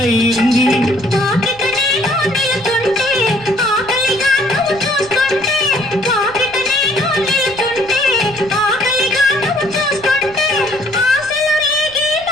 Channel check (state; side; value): noise; right; rumble, 22 dB below the sound